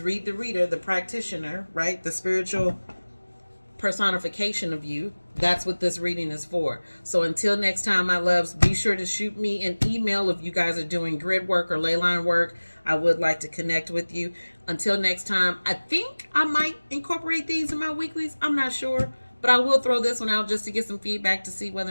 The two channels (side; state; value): both; inverted; correlation -1.00